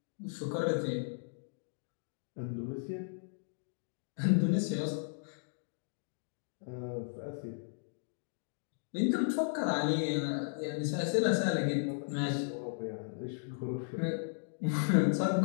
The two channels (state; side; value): silent; right; digital silence